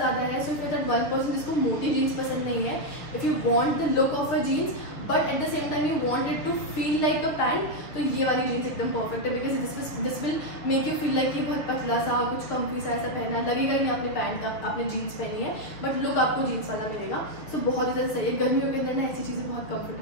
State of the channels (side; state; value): right; late; 6.7 ms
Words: है। सो इफ दैट 1% जिसको मोटी जीन्स पसंद नहीं है, if you want the look of a jeans but at the same time you want it to feel like a pant, तो ये वाली जीन्स एकदम परफेक्ट है, because this will make you feel like ये बहुत पतला सा, कुछ कम्फी सा ऐसा पहना है, लगेगा ही नहीं आपने पैंट, आपने जीन्स पहनी है, बट लुक आपको जीन्स वाला मिलेगा। सो बहुत ही ज़्यादा सही है, गर्मियों के अंदर ना ऐसी चीज़ें बहुत